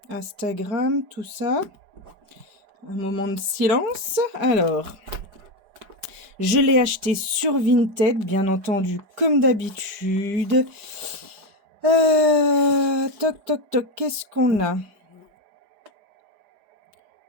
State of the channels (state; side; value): late; left; 4.9 ms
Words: Instagram, tout ça. Un moment de silence. Alors, je l'ai acheté sur Vinted, bien entendu, comme d'habitude. Toc, qu'est-ce qu'on a?